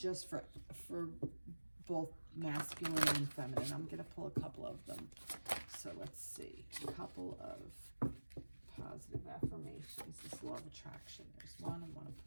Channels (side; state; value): both; inverted; correlation -1.00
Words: for both masculine and feminine. I'm gonna pull a couple of them. So let's see, a couple of positive affirmations. This law of attraction. There's one. I want to